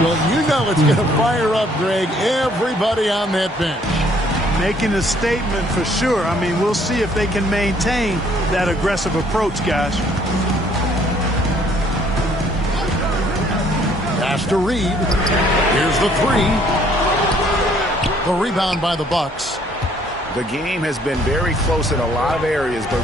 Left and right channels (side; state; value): both; normal; correlation 0.62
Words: Well, you know it's going to fire up, Greg, everybody on that bench. Making a statement for sure. I mean, we'll see if they can maintain that aggressive approach, guys. Pass to Reed. Here's the 3. The rebound by the Bucks. The game has been very close in a lot of areas, but